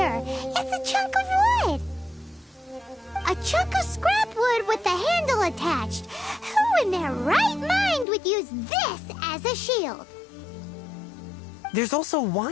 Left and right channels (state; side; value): drops out; right; at 8.1 s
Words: It's a chunk of wood. A chunk of scrap wood with the handle attached. Who in their right mind would use this as a shield? There's also